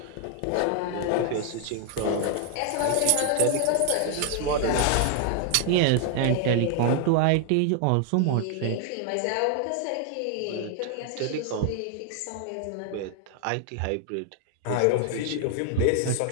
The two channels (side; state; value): both; different; correlation 0.00